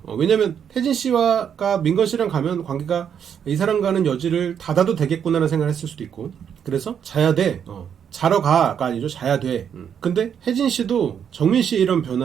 왜냐면 혜진 씨와 민건 씨랑 가면 관계가 이 사람과는 여지를 닫아도 되겠구나라는 생각을 했을 수도 있고, 그래서 자야 돼, 자러 가가 아니죠. 자야 돼. 근데 혜진 씨도 정민 씨의 이런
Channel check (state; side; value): quieter; left; 8.2 dB